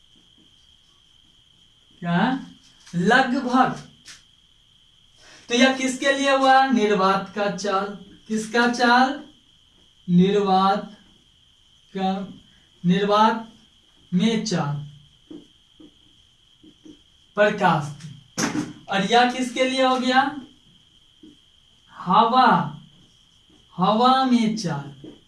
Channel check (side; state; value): both; identical; correlation 1.00